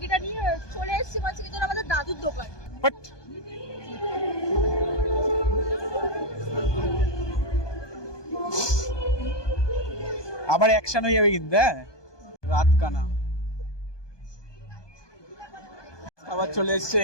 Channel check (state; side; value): late; right; 1.2 ms